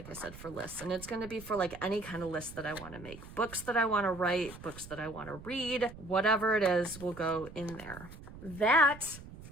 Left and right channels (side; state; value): right; noise; rumble, 16 dB below the sound